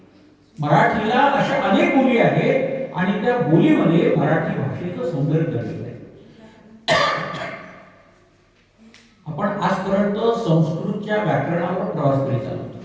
मराठीला, अशा अनेक बोली आहेत आणि त्या बोलीमध्ये मराठी भाषेचं सौंदर्य दर्शवलं आहे. आपण आजपर्यंत संस्कृतच्या व्याकरणावर प्रवास करीत आलो.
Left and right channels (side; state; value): both; identical; correlation 1.00